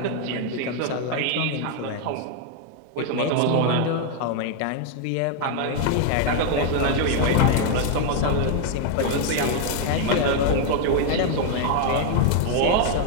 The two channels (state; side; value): different; both; correlation 0.00